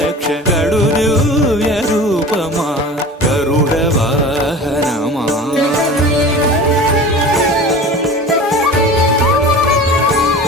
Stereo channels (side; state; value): both; normal; correlation 0.37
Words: కడు దివ్య రూపమా గరుడ వాహనమా